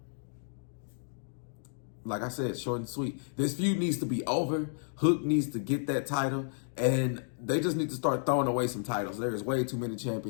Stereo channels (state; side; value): silent; right; digital silence